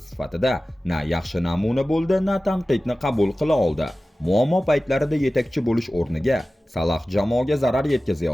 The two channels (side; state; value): both; normal; correlation 0.96